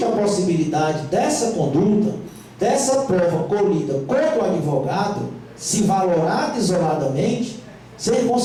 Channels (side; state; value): both; identical; correlation 1.00